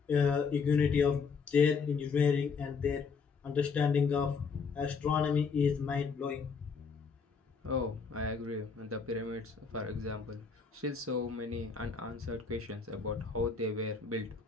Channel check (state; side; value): quieter; right; 5.3 dB